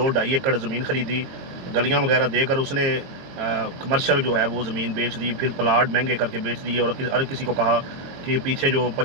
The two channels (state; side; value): late; left; 22 ms